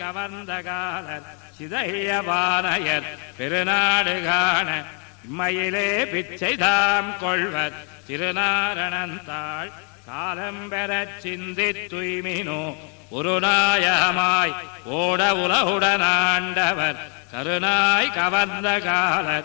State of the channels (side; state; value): right; quieter; 38.1 dB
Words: கவர்ந்த காலர் சிதைய பானையர் பெருநாடு காண இம்மையிலே பிச்சை தாம் கொள்வர் திருநாரணந்தாள் காலம் பெறச் சிந்தி துய்மினோ ஒரு நாயகமாய் ஓட உலகுடனாண்டவர் கருநாய் கவர்ந்த